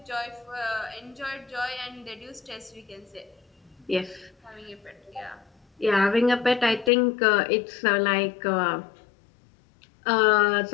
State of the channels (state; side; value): drops out; right; at 6.9 s